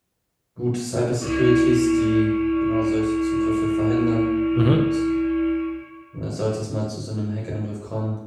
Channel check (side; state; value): both; identical; correlation 1.00